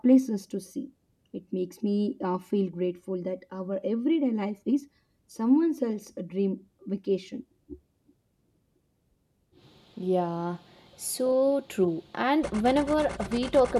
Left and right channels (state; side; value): identical; both; correlation 1.00